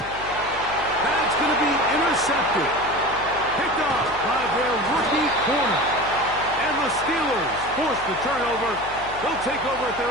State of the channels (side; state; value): left; noise; hum, 17 dB below the sound